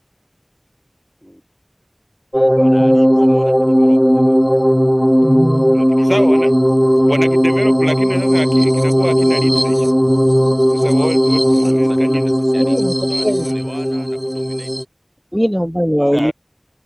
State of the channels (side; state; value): both; identical; correlation 1.00